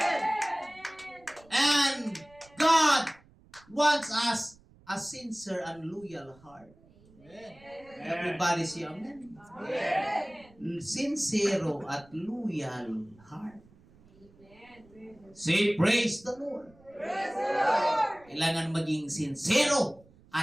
And God wants us a sincere and loyal heart. Everybody say amen. Sincero at loyal heart. Say praise the Lord. Kailangan maging sincero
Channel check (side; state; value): right; noise; rumble, 27 dB below the sound